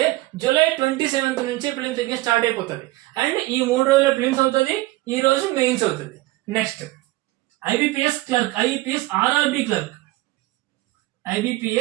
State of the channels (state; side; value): quieter; left; 19.2 dB